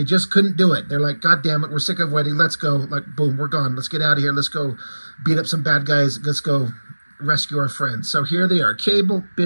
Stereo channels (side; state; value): both; inverted; correlation -1.00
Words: just couldn't do it. They're like, God damn it, we're sick of waiting. Let's go. Like, boom, we're gone. Let's get out of here. Let's go beat up some bad guys. Let's go rescue our friends. So here they are. Cable,